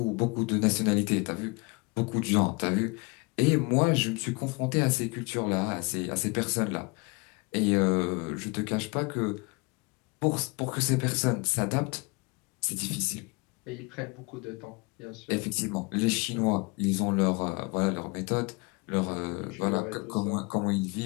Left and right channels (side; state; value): right; quieter; 28.5 dB